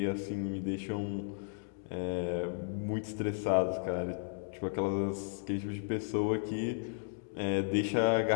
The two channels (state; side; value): silent; right; digital silence